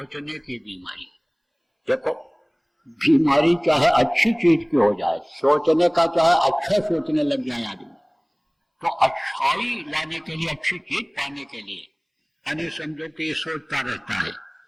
की बीमारी। देखो, बीमारी चाहे अच्छी चीज की हो जाए, सोचने का चाहे अच्छा सोचने लग जाए आदमी, तो अच्छाई लाने के लिए, अच्छी चीज पाने के लिए यानी समझो कि सोचता रहता है,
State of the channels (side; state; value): both; identical; correlation 1.00